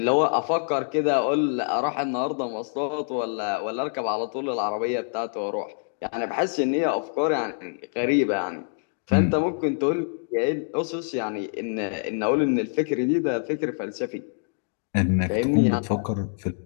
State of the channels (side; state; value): right; silent; 61 dB below the other